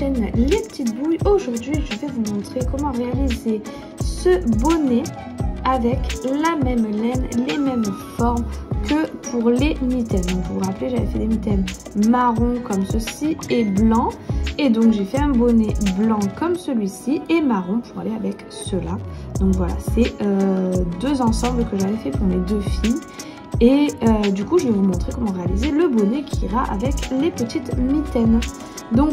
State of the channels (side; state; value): both; identical; correlation 1.00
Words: Les Petites Bouilles. Aujourd'hui, je vais vous montrer comment réaliser ce bonnet avec la même laine, les mêmes formes que pour les mitaines. Donc, vous vous rappelez, j'avais fait des mitaines marron comme ceci et blanc. Et donc, j'ai fait un bonnet blanc comme celui-ci et marron pour aller avec cela. Donc voilà, c'est deux ensembles que j'avais fait pour mes deux filles. Et du coup, je vais vous montrer comment réaliser le bonnet qui ira avec les petites mitaines.